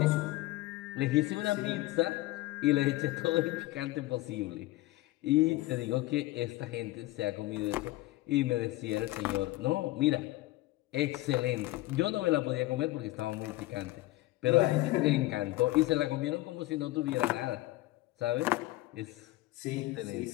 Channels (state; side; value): quieter; right; 18.2 dB